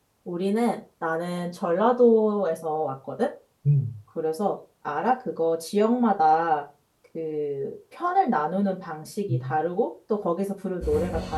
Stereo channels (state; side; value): identical; both; correlation 1.00